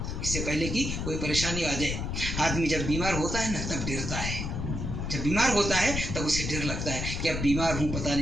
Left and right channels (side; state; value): left; noise; rumble, 3 dB below the sound